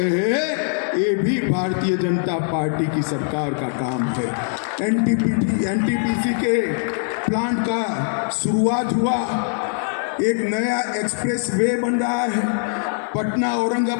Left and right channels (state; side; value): silent; right; digital silence